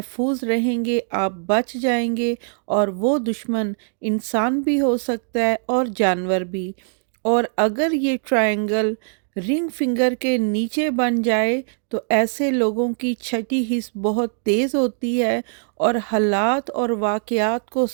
रहेंगे, आप बच जाएंगे। और वो दुश्मन इंसान भी हो सकता है और जानवर भी। और अगर ये ट्रायंगल रिंग फिंगर के नीचे बन जाए तो ऐसे लोगों की छठी हिस्स बहुत तेज़ होती है और हालात और वाक़यात को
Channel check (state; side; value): silent; left; 59 dB below the other